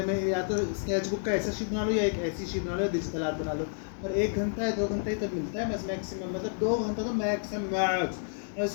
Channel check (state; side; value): silent; right; digital silence